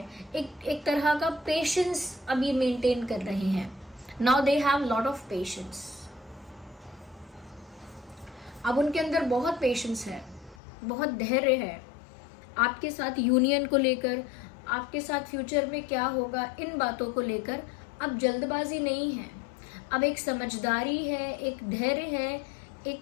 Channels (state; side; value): drops out; right; at 10.6 s